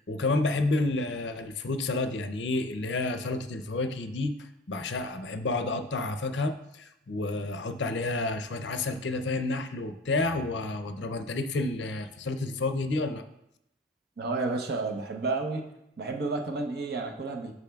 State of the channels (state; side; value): normal; both; correlation 0.39